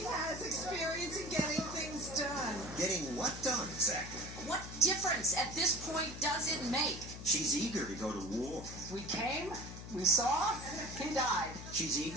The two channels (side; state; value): left; noise; hum, 11 dB below the sound